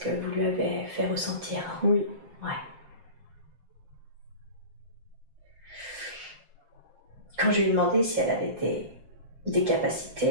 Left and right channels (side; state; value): left; late; 7.5 ms